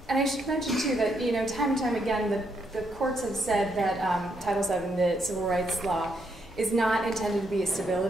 I should mention too that time and time again the courts have said that Title VII, the civil rights law, is not intended to be a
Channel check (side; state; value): both; normal; correlation 0.77